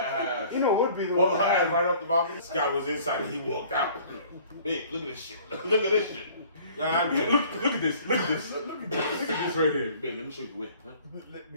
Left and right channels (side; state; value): both; inverted; correlation -0.52